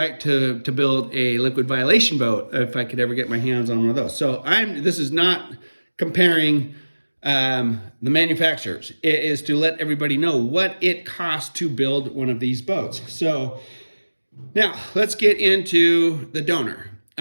to build a liquid violation boat if I could ever get my hands on one of those. So this is not comparing the manufacturers. It is to let everybody know what it costs to build one of these boats. So now let's get into the donor.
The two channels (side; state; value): both; inverted; correlation -1.00